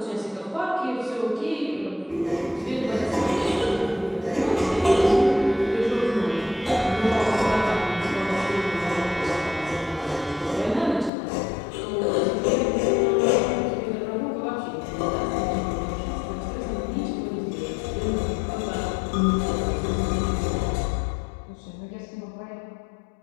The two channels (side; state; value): right; drops out; at 11.1 s